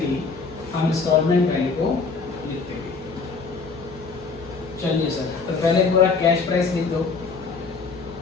हम इंस्टॉलमेंट वैल्यू को लिखते हैं। चलिए सर, तो पहले पूरा कैश प्राइस लिख दो।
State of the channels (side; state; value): right; quieter; 4.6 dB